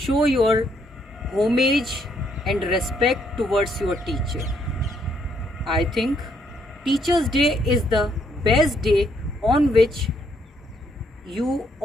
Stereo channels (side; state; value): both; normal; correlation 0.71